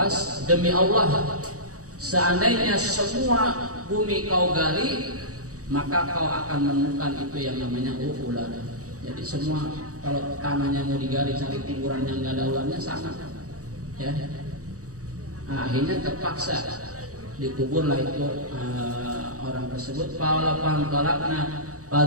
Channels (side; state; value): left; late; 0.66 ms